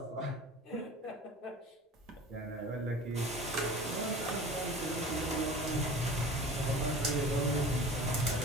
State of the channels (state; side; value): normal; both; correlation 0.39